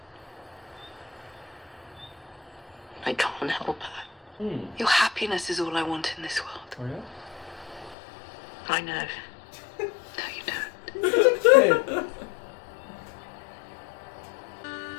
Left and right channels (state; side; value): drops out; right; at 8.0 s